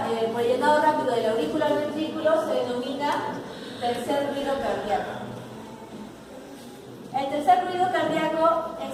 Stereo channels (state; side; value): identical; both; correlation 1.00